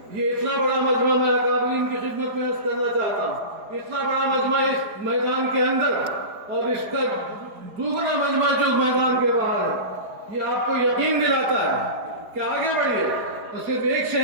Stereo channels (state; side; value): late; left; 4.6 ms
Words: یہ اتنا بڑا مجمع میں اکابرین کی خدمت میں عرض کرنا چاہتا ہوں، اتنا بڑا مجمع اس میدان کے اندر اور اس کا دوسرا مجمع جو میدان کے باہر ہے، یہ آپ کو یقین دلاتا ہے کہ آگے بڑھیے. اور صرف ایک